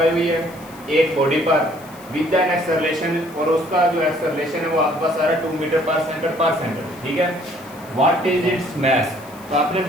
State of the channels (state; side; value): noise; left; hiss, 23 dB below the sound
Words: हुई है एक बॉडी पर विद एन एक्सेलरेशन, और उसका जो एक्सेलरेशन है वो आपके पास आ रहा है 2 मीटर पर सेकंड। ठीक है, व्हाट इज इट्स मैस। तो आपने